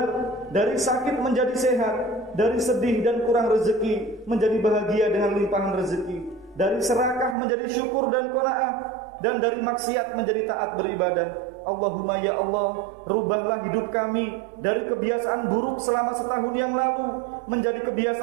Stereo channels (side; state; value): left; drops out; at 7.4 s